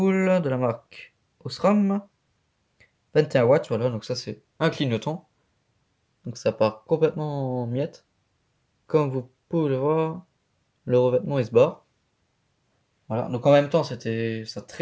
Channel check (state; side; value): identical; both; correlation 1.00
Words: de la marque Osram, 21 watts, voilà, donc ça c'est un clignotant. Donc ça part complètement en miettes. Comme vous pouvez le voir, le revêtement il se barre. Voilà, donc en même temps ça